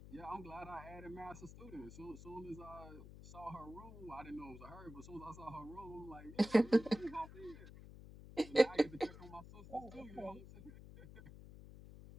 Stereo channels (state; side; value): noise; left; hum, 15 dB below the sound